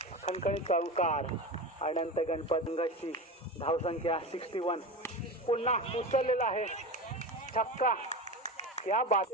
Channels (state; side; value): normal; both; correlation 0.25